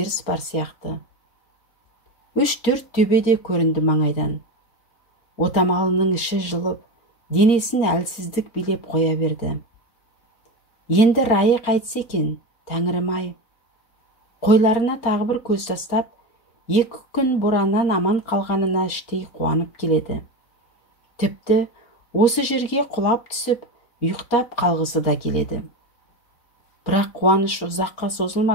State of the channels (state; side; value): late; right; 4.3 ms